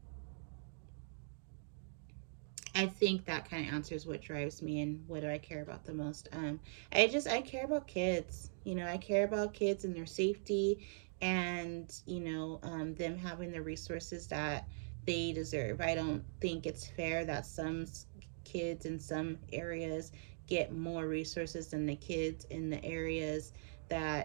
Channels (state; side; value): silent; left; digital silence